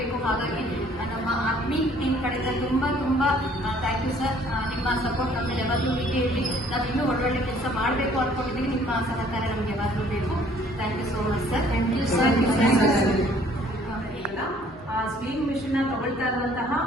ಹಾಗಾಗಿ ನಮ್ಮ ಆತ್ಮೀಯ ಟೀಮ್ ಕಡೆಯಿಂದ ತುಂಬ ಥ್ಯಾಂಕ್ ಯು ಸರ್. ನಿಮ್ಮ ಸಪೋರ್ಟ್ ನಮಗೆ ಯಾವಾಗಲೂ ಹೀಗೆ ಇರಲಿ. ನಾವು ಇನ್ನೂ ಒಳ್ಳೊಳ್ಳೆ ಕೆಲಸ ಮಾಡಬೇಕು ಅಂದ್ಕೊಂಡಿದ್ದೀವಿ. ನಿಮ್ಮ ಸಹಕಾರ ನಮಗೆ ಯಾವಾಗಲೂ ಬೇಕು. Thank you so much sir. Thank you sir. ಆ ಸ್ವಿಂಗ್ ಮಿಷನ್ ತಗೊಳ್ತಾ ಇರುವಂತಹ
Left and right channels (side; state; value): both; normal; correlation 0.58